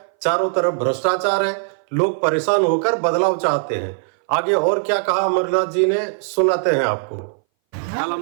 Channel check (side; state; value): left; silent; 61 dB below the other